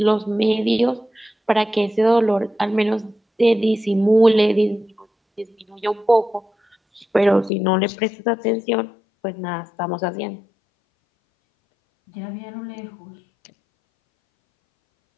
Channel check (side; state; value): right; drops out; at 7.5 s